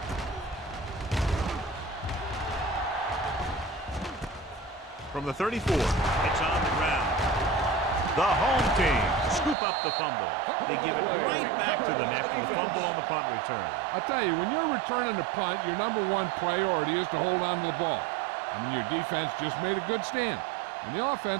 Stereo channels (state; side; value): drops out; left; at 9.6 s